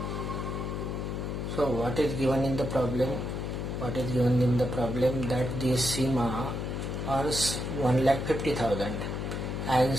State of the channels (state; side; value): noise; left; hum, 3 dB below the sound